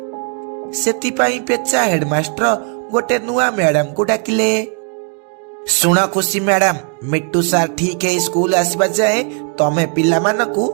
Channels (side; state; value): left; quieter; 38.1 dB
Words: सेथिपाई पेचा हेडमास्टर गोटे नुआ मैडम को डाकिले। सुना खुशी मैडम, मिट्टू सार ठीक है स्कूल आसीबा जाए तमे पिला मानकू